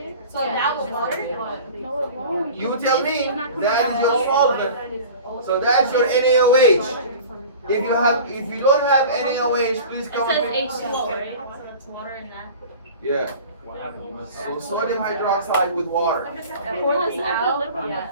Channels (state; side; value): inverted; both; correlation -0.39